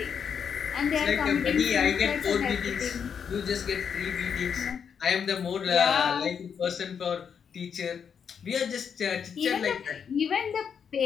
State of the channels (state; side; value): quieter; right; 7.2 dB